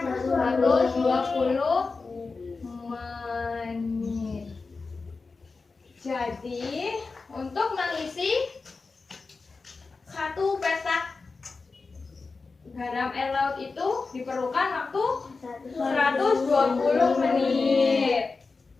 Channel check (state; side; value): quieter; right; 4.2 dB